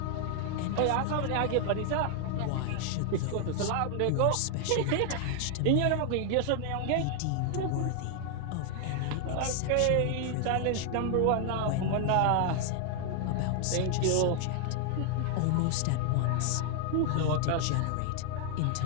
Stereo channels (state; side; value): different; both; correlation 0.00